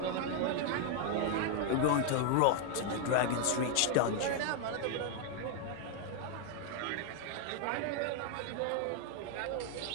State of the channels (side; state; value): both; different; correlation 0.00